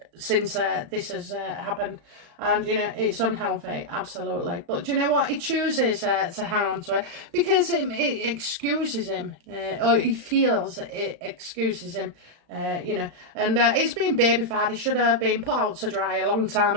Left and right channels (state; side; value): late; left; 35 ms